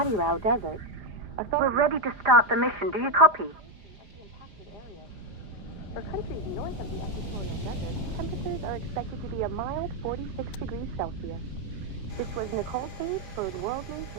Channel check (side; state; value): left; late; 4.9 ms